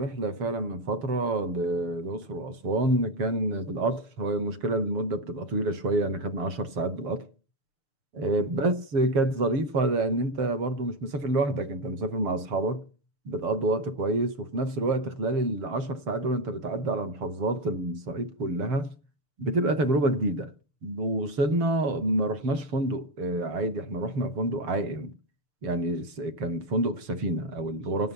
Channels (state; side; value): late; left; 6.8 ms